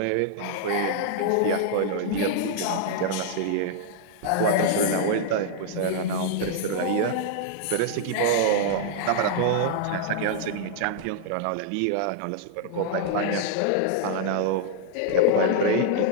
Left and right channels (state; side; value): different; both; correlation -0.01